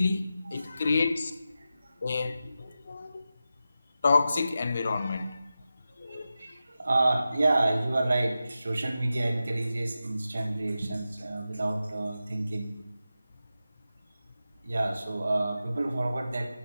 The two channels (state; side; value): inverted; both; correlation -0.92